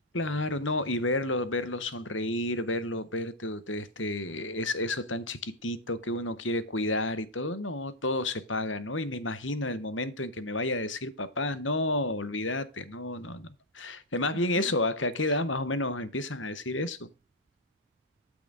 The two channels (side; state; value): both; normal; correlation -0.02